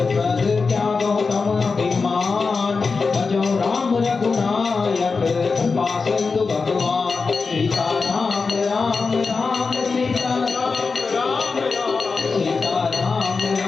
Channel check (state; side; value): quieter; right; 4.6 dB